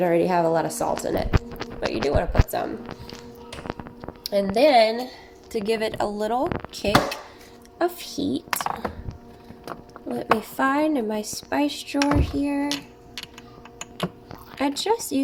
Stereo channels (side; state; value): both; identical; correlation 1.00